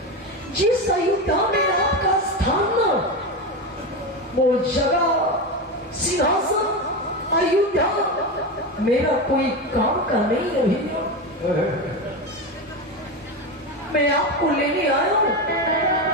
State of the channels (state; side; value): normal; both; correlation 0.18